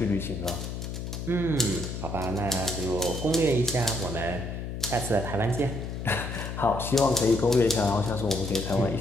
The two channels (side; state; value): left; noise; hum, 6 dB below the sound